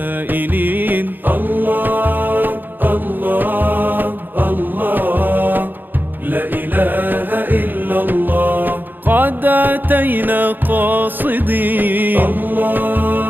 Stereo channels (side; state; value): left; late; 0.090 ms